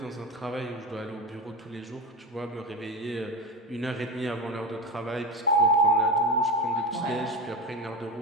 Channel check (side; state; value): both; normal; correlation 0.20